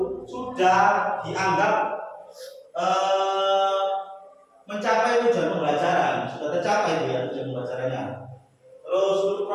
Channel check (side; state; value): both; identical; correlation 1.00